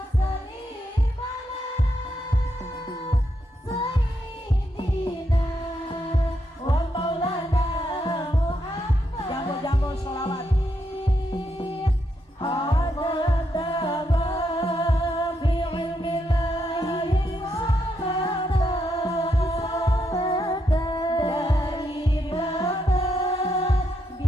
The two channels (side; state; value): both; normal; correlation 0.80